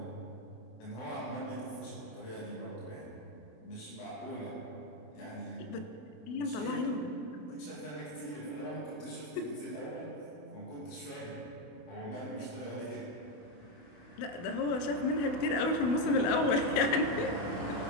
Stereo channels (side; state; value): right; late; 28 ms